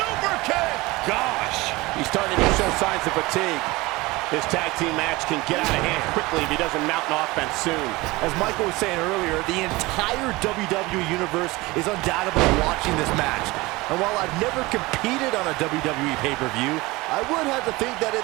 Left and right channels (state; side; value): quieter; left; 21.7 dB